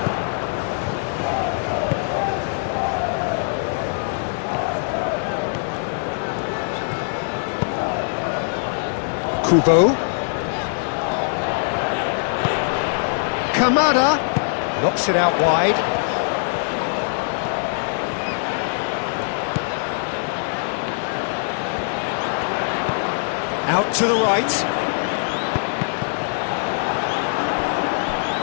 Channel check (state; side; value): silent; right; digital silence